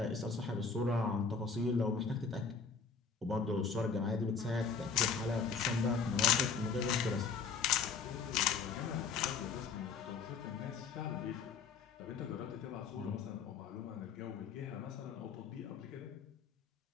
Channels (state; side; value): quieter; right; 5.5 dB